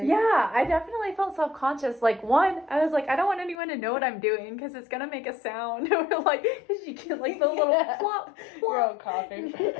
yeah, I definitely felt self-conscious. Like, one, I was like, I don't want anyone to know what I'm doing because it's gonna make a sound. Or like, because you get like the little plop, plop. You're all coughing.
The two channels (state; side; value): drops out; right; at 3.6 s